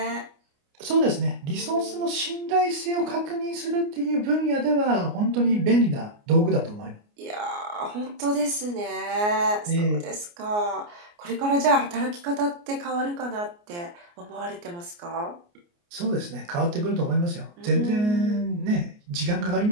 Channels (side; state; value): left; late; 29 ms